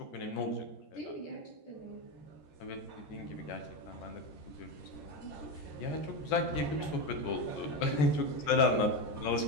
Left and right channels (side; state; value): right; late; 13 ms